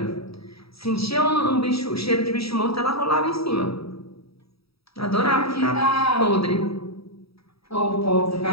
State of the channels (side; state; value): right; late; 0.77 ms